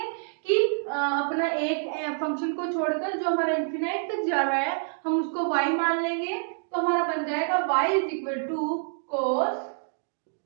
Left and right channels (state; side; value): silent; left; digital silence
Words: कि अपना एक फंक्शन को छोड़कर जो हमारा इंफिनाइट तक जा रहा है हम उसको y मान लेंगे तो हमारा बन जाएगा y is equal to cos